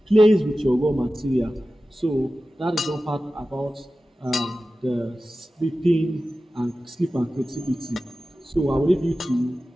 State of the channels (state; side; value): normal; both; correlation 0.95